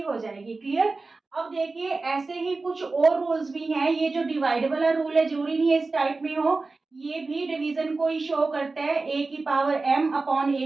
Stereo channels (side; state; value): left; quieter; 3.7 dB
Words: हो जाएगी। क्लियर। अब देखिए ऐसे ही कुछ और रूल्स भी हैं। ये जो डिवाइड वाला रूल है, जरूरी नहीं है इस टाइप में हो, ये भी डिवीजन को ही शो करता है, a की पावर m अपॉन